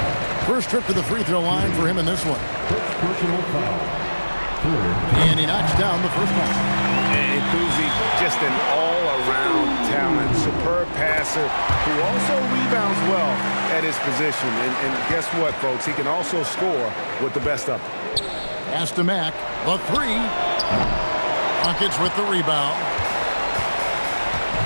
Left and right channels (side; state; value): both; inverted; correlation -1.00